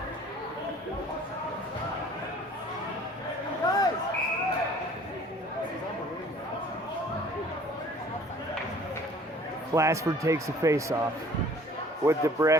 Glassford takes a face-off with the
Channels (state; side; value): normal; both; correlation 0.51